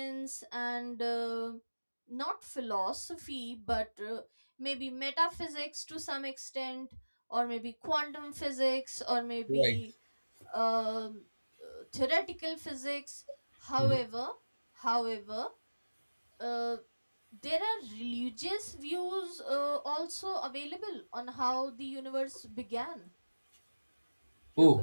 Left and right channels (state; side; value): inverted; both; correlation -1.00